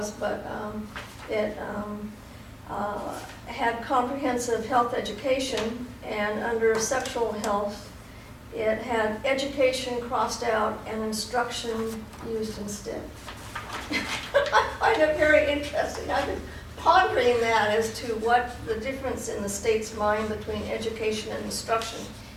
but it had comprehensive health education, and under sexual health, it had education crossed out and instruction used instead. I find it very interesting. I've been pondering that as to what the difference in the state's mind between education and instruction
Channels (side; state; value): both; identical; correlation 1.00